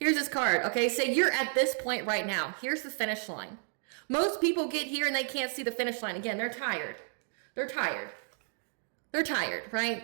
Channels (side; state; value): left; silent; digital silence